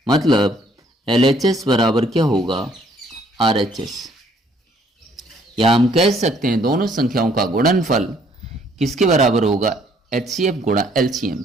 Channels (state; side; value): normal; both; correlation 0.63